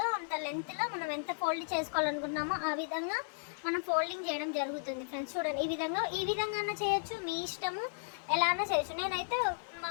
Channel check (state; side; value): silent; right; digital silence